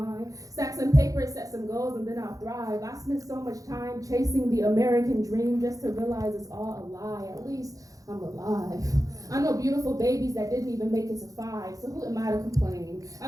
Stack some paper, set some goals, and then I'll thrive. I spent so much time chasing the American dream just to realize it's all a lie. At least I'm alive. I know beautiful babies that didn't even make it to 5, so who am I to complain?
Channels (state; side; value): late; left; 0.17 ms